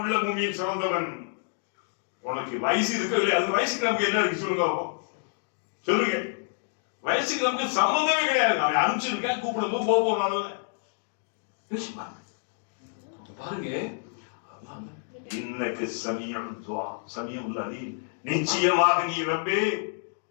மூமியை சிறந்தவன். உனக்கு வயசு இருக்கு இல்லையா? அது வயசுக்கு நமக்கு என்ன இருக்கு சொல்லுங்க, சொல்லுங்க. வயசுக்கு நமக்கு சம்பந்தமே கிடையாது. அவன் அனுப்பிச்சிருக்கேன், கூப்பிடும்போது போனால பாருங்க. இன்னக்கு சமீஉல் துஆ, சமீஉல் அலீம், நிச்சயமாக நீ ரப்பே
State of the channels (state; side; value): silent; right; digital silence